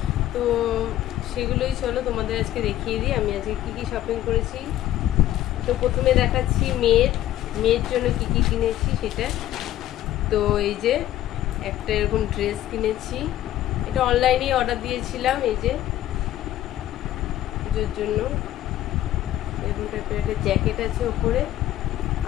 তো সেগুলোই চলো তোমাদের আজকে দেখিয়ে দিই আমি আজকে কি শপিং করেছি। তো প্রথমে দেখাচ্ছি মেয়ের জন্য কি কিনেছি সেটা। তো এই যে একটা এরকম ড্রেস কিনেছি, এটা অনলাইনেই অর্ডার দিয়েছিলাম। এই যে পুজোর জন্য এরকম টাইপের একটা জ্যাকেট আছে ওপরে,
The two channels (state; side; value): quieter; right; 13.3 dB